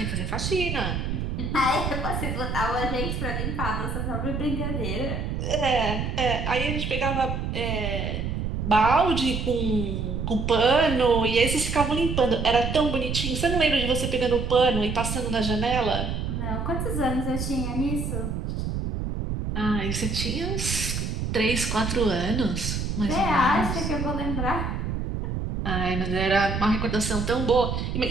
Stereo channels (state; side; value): noise; right; rumble, 2 dB below the sound